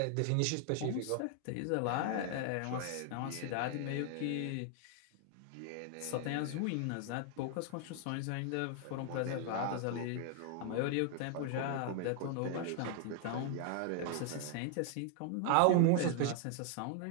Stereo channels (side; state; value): both; different; correlation 0.00